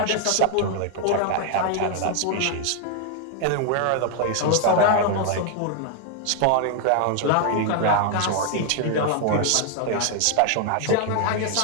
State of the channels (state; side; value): different; both; correlation 0.00